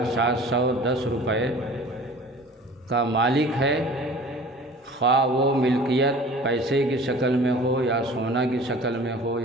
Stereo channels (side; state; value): both; normal; correlation 0.44